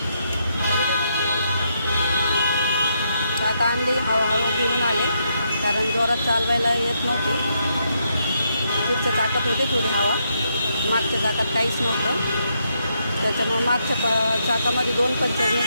तर आता आणली, हळूहळू घेऊन आले, कारण जोरात चालवायला येत नव्हती. पुढच्या चाकात होती थोडी हवा, मागच्या चाकात काहीच नव्हतं. त्याच्यामुळे मागच्या चाकामध्ये 2 पंचर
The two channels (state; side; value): inverted; both; correlation -0.78